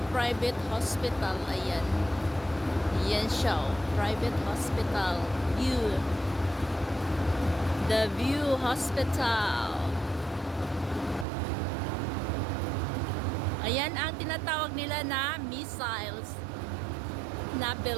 private hospital. Ayan. Ayan siya, oh. Private hospital. View. The View Hospital. Ayan ang tinatawag nila na missiles na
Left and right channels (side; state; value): left; drops out; at 11.2 s